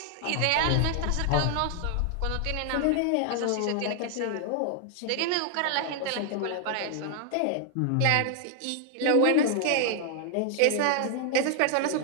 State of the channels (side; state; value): both; different; correlation 0.00